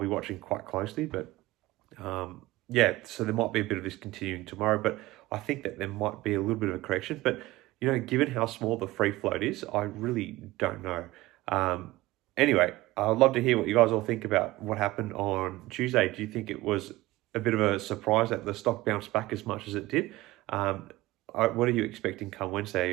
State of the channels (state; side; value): quieter; left; 18.8 dB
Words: watching quite closely. But so there might be a bit of this continuing tomorrow, but I think that there might be a little bit of a correction. But, given how small the free float is, I really don't know. Anyway, I'd love to hear what you guys all think about what happened on Tuesday. Do you think it was a bit of a surprise that the stock bounced back as much as it did? what are you expecting come Wednesday? Are